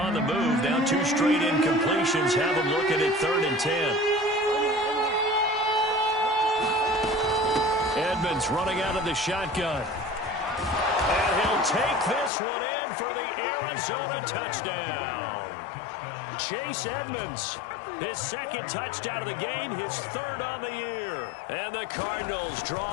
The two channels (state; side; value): drops out; right; at 12.3 s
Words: the move. Now 2 straight incompletions have them looking at 3rd and 10. Edmonds running out of the shotgun. And he'll take this one in for the Arizona touchdown. Chase Edmonds, his 2nd touchdown of the game, his 3rd on the year. And the Cardinals